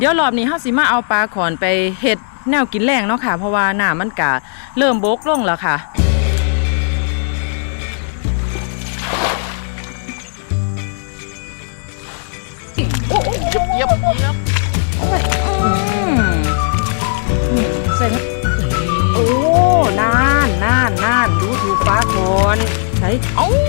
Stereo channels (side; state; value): right; silent; digital silence